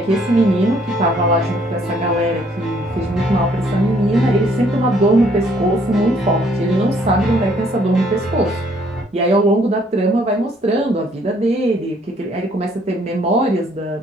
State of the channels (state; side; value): normal; both; correlation 0.64